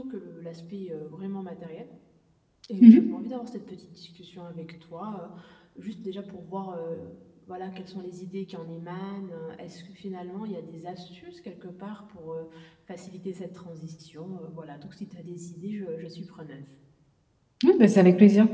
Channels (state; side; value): identical; both; correlation 1.00